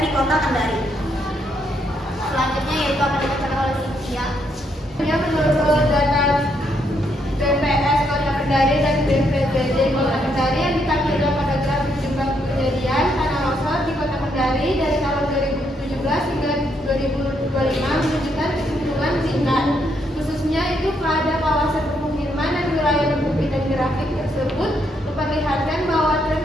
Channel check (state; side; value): normal; both; correlation 0.75